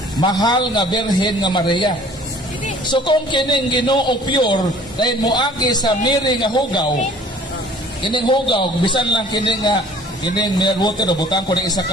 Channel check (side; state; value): both; normal; correlation 0.51